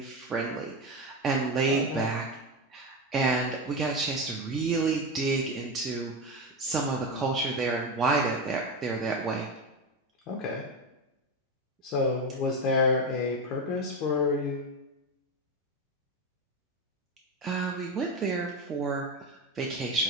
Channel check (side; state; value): both; normal; correlation 0.16